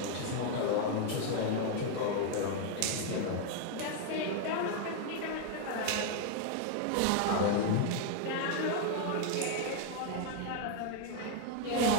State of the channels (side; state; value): both; different; correlation 0.01